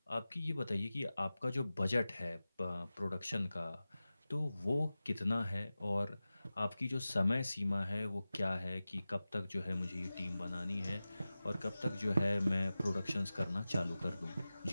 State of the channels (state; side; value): inverted; both; correlation -0.96